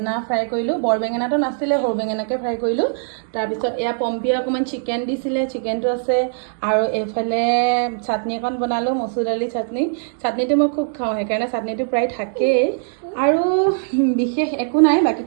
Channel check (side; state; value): left; silent; digital silence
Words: ফ্ৰাই কৰিলোঁ। বৰ বেঙেনাটো নাছিলে, সৰু বেঙেনাকে ফ্ৰাই কৰিলোঁ। তাৰপিছত এয়া পম্পীয়ে অকণমান চিকেন দিছিলে, চিকেনটো আছে। আৰু এইফালে চাটনি অকণ বনালোঁ, মচুৰ দালি চাটনি। চাটনিটো মই খুব খাওঁ, সেইকাৰণে চাটনিটো প্ৰায় থাকেই। আৰু বিশেষ একো নাই। বাকী